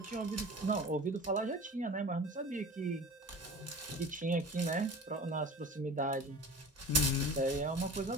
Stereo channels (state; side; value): normal; both; correlation 0.37